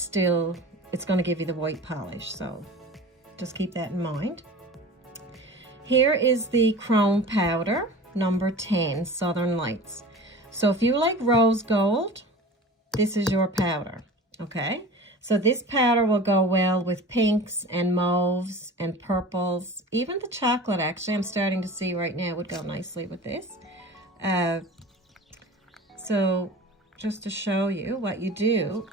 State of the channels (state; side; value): normal; both; correlation 0.38